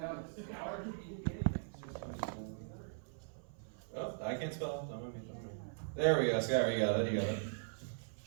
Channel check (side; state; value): left; silent; 51 dB below the other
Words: Oh, I can't spell. Don't mind me. There we go. Scott, you got it. You got it.